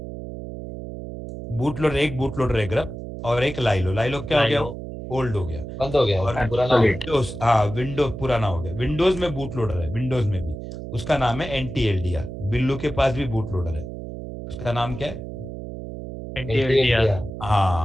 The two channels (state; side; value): noise; right; hum, 9 dB below the sound